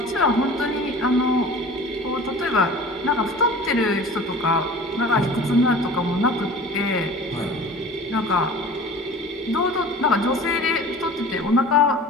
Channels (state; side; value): normal; both; correlation 0.41